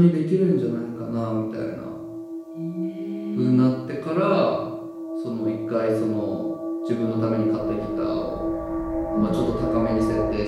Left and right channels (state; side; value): identical; both; correlation 1.00